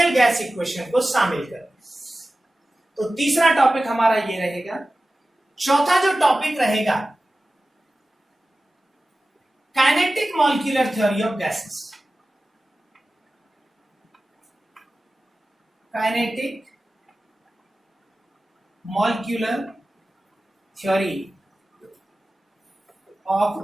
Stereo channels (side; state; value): both; normal; correlation 0.95